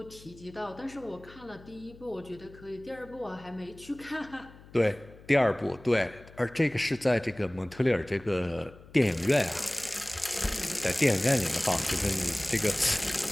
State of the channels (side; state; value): left; noise; hum, 21 dB below the sound